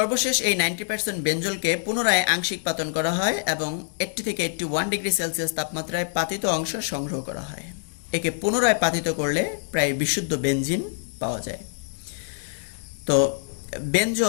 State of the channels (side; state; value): right; silent; digital silence